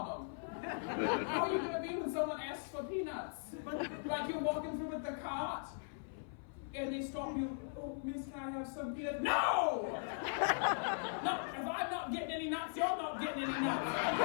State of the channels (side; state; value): right; silent; 52 dB below the other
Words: them. How are you going to be when someone asks for peanuts? Like you're walking through with the cart, and they stop you, oh, miss, can I have some peanuts? No! No, if I'm not getting any nuts, you're not getting any nuts.